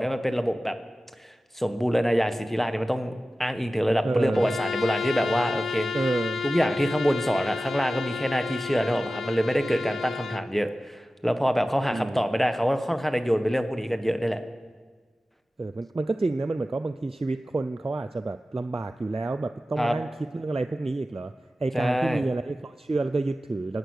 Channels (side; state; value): both; normal; correlation 0.95